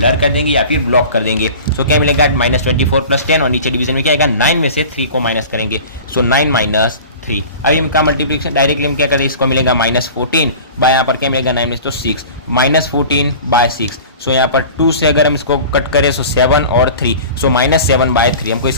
कर देंगे या फिर ब्लॉक कर देंगे। सो क्या मिलेगा, -24 + 10 और नीचे डिवीजन में क्या आएगा, 9 में से 3 को माइनस करेंगे, सो 9 - 3। अभी इनका मल्टीप्लिकेशन डायरेक्टली हम क्या करें, इसको मिलेगा -14 बाय यहाँ पर क्या मिलेगा 9 में से तो 6, -14/6। सो यहाँ पर 2 से अगर हम इसको कट करें सो 7 और 3, सो -7/3 हमको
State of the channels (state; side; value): inverted; both; correlation -0.39